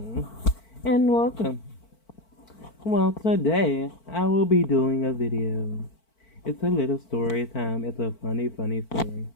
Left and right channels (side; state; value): right; late; 4.5 ms